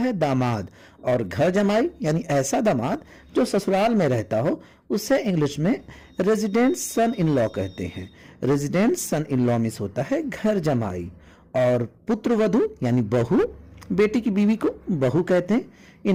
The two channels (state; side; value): identical; both; correlation 1.00